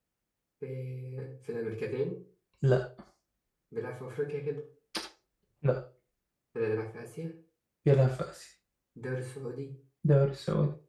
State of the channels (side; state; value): both; identical; correlation 1.00